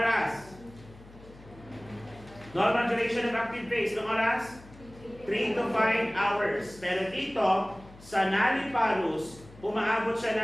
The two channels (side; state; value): left; noise; hum, 21 dB below the sound